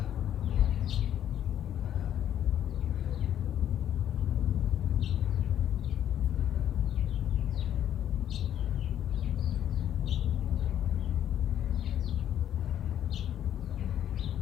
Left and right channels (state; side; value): quieter; right; 10.5 dB